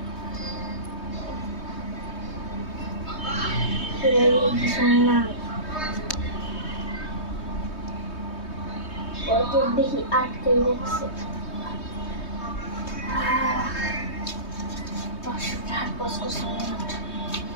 কিছু নাই। পকেট দেখি আটকে রাখছে। 500 টাকার পস্কো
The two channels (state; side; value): late; right; 3.2 ms